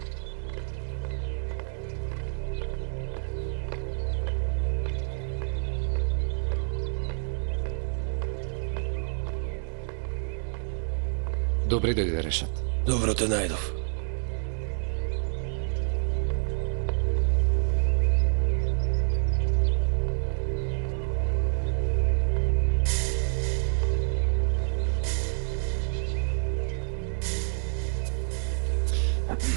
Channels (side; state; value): left; silent; 59 dB below the other